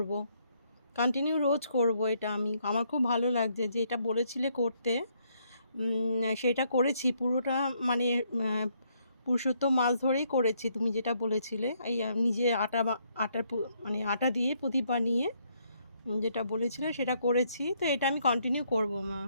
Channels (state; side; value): inverted; both; correlation -0.72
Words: কন্টিনিউ রোজ করব। এটা আমার খুব ভালো লাগছে যে এটা বলেছিলে করতে, সেটা করেছি পুরোটা। মানে পুরুষোত্তম মাস ধরেই করেছি তুমি যেটা বলেছিলে, এই নিজে মানে আটা দিয়ে প্রদীপ বানিয়ে যেটা বলেছিলে সেটা করেছি। তো এটা আমি কন্টিনিউ করব মা,